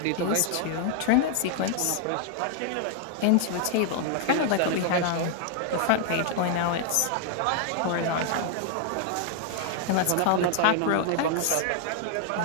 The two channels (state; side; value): different; both; correlation 0.00